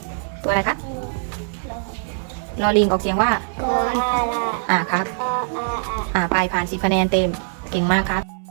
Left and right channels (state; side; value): silent; left; 64 dB below the other